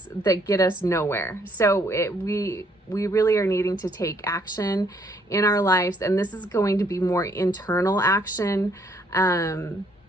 that get us nowhere. So we really are needing to take action in our lives, and this is going to be more internal action. And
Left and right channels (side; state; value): both; normal; correlation 0.67